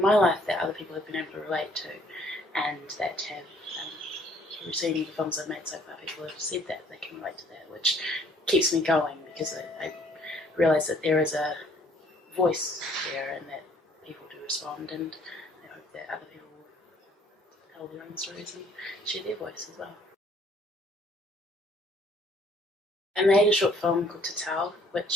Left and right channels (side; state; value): both; normal; correlation 0.61